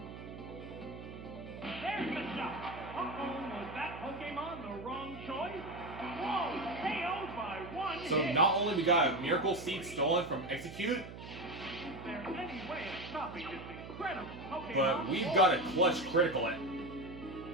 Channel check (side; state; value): right; noise; hum, 12 dB below the sound